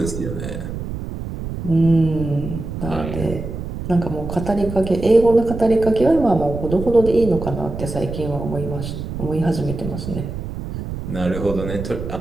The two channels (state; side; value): noise; right; rumble, 7 dB below the sound